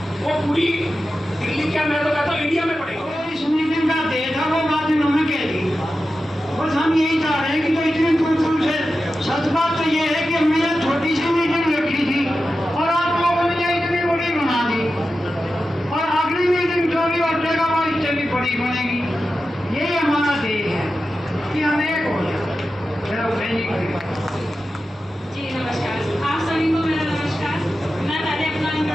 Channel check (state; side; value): normal; both; correlation 0.92